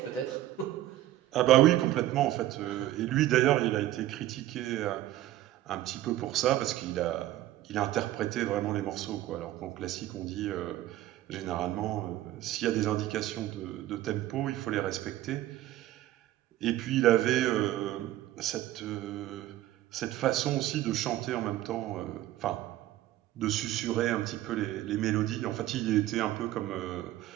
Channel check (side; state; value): left; quieter; 14.3 dB